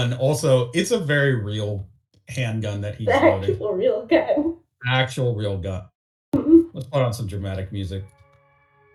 also it's a very real handgun that he's loading. Actual real gun. Actual real gun. Let's put on some dramatic music.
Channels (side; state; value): both; identical; correlation 1.00